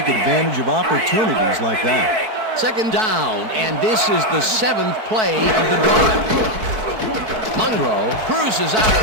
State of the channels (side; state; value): left; late; 4.6 ms